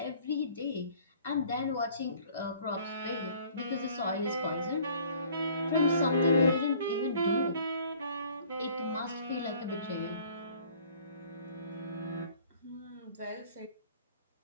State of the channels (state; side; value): inverted; both; correlation -0.53